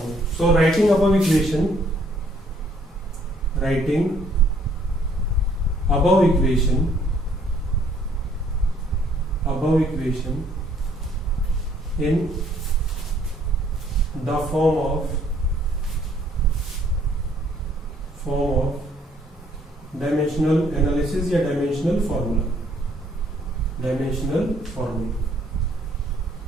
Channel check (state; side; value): normal; both; correlation 0.64